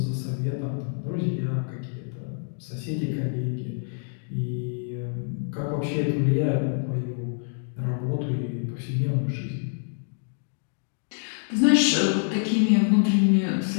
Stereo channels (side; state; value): right; silent; 61 dB below the other